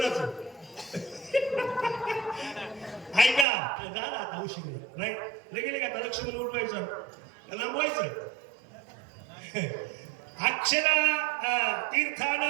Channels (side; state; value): left; drops out; at 3.5 s